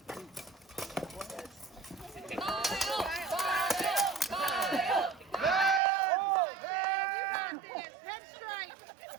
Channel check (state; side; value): drops out; left; at 5.8 s